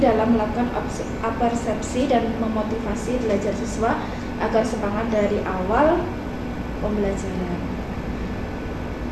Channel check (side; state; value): both; identical; correlation 1.00